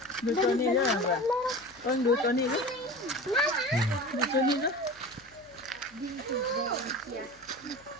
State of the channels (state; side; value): noise; left; hum, 29 dB below the sound